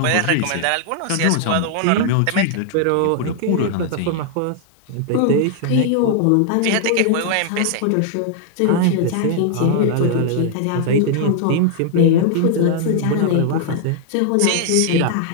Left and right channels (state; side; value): different; both; correlation 0.00